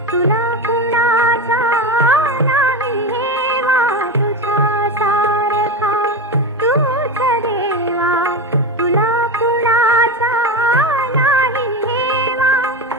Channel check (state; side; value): normal; both; correlation 0.20